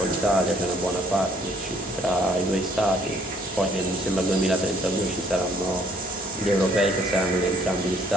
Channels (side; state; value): both; normal; correlation 0.63